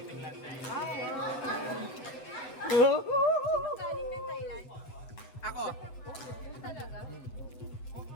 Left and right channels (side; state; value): right; late; 8.0 ms